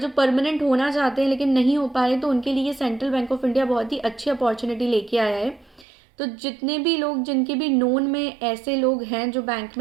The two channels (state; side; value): drops out; left; at 5.9 s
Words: परमानेंट होना चाहते हैं लेकिन नहीं हो पा रहे, तो उनके लिए सेंट्रल बैंक ऑफ इंडिया बहुत ही अच्छी अपॉर्चुनिटी लेके आया है। तो जितने भी लोग, जिनके भी नोन में ऐसे लोग हैं जो बैंक